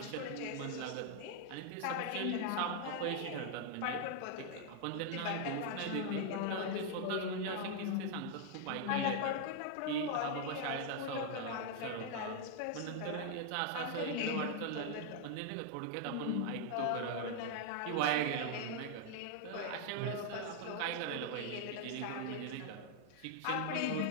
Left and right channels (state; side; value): different; both; correlation 0.00